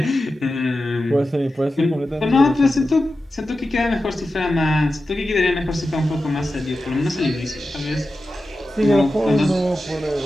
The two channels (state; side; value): normal; both; correlation 0.92